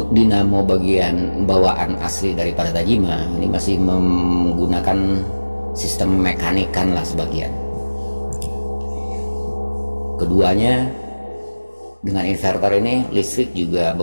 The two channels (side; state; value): both; inverted; correlation -1.00